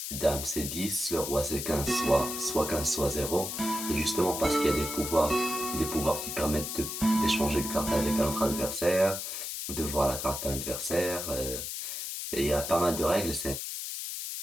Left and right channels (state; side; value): noise; left; hiss, 5 dB below the sound